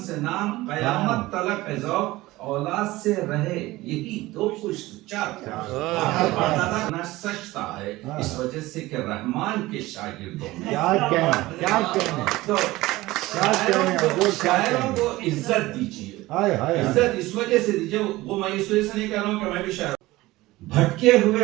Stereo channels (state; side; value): quieter; left; 18.7 dB